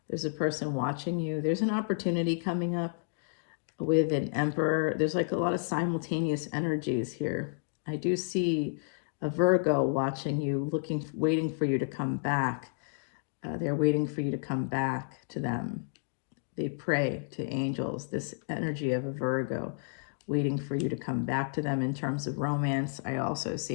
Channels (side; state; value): right; silent; digital silence